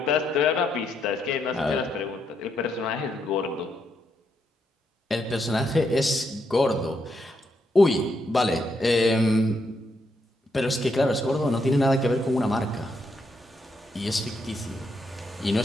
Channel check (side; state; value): both; normal; correlation 0.79